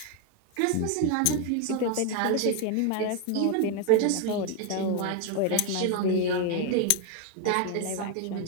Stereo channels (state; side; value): different; both; correlation 0.01